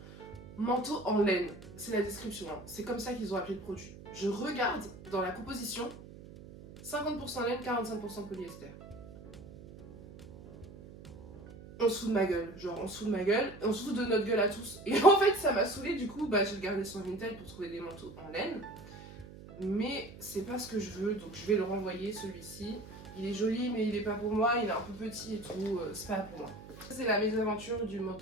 Manteau en laine, c'est la description, hein. C'est comme ça qu'ils ont appelé le produit. Je regarde dans la composition, 50% laine, 45% polyester. On se fout de ma gueule, genre on se fout de ma gueule, on se fout de notre gueule à tous. Et en fait ça m'a saoulée, du coup j'ai regardé sur Vinted pour trouver des manteaux en laine. Mais c'est pas ce que je veux, donc je vais le renvoyer celui-ci. Il est joli mais il est pas pour moi, il est un peu petit et tout, c'est pas pour moi. C'est la mésaventure du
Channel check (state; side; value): noise; right; hum, 16 dB below the sound